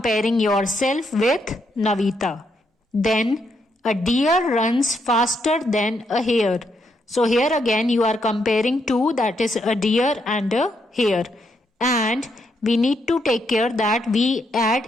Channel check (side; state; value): both; normal; correlation 0.77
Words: yourself with Navita. Then a deer runs faster than a hare. So here again you are comparing two, that is a deer and a hare. And we need to take care that we